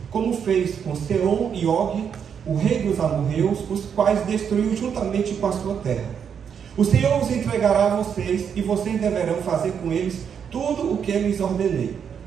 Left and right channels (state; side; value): quieter; left; 7.5 dB